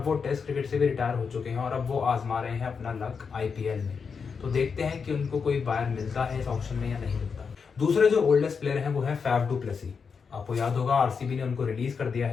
वो टेस्ट क्रिकेट से भी रिटायर हो चुके हैं और अब वो आजमा रहे हैं अपना लक आईपीएल में। तो देखते हैं कि उनको कोई बायर मिलता है इस ऑक्शन में या नहीं मिलता। दूसरे जो ओल्डेस्ट प्लेयर हैं वो है फैफ डू प्लेसी। आपको याद होगा आरसीबी ने उनको रिलीज कर दिया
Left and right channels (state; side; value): quieter; right; 5.8 dB